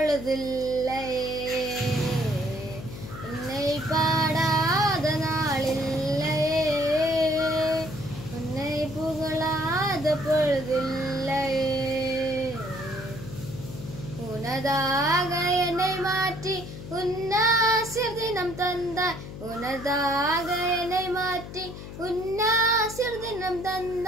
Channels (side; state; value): left; noise; hum, 11 dB below the sound